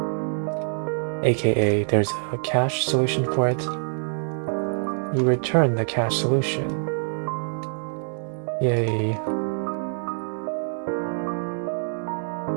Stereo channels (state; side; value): silent; left; 62 dB below the other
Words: aka there's a cache solution for it, you return the cache solution. Yay.